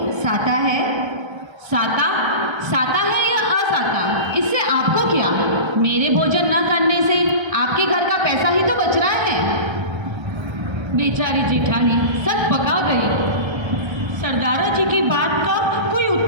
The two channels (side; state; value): left; late; 1.3 ms